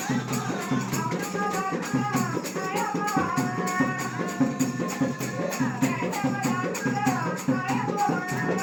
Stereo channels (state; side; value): identical; both; correlation 1.00